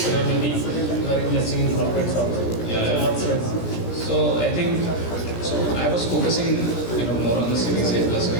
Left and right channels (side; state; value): right; late; 17 ms